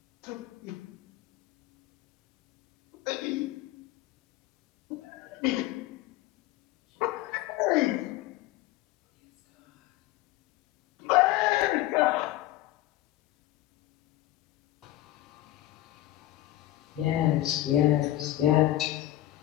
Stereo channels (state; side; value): quieter; right; 15.3 dB